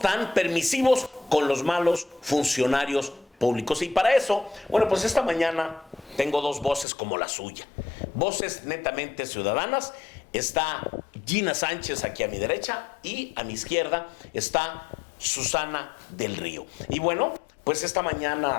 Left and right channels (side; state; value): right; drops out; at 6.9 s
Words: permisivos con los malos funcionarios públicos. Y para eso, bueno, pues esta mañana tengo dos voces como la suya. Voces netamente ciudadanas. Está Gina Sánchez aquí a mi derecha y a mi izquierda está Susana del Río. Y bueno, pues esta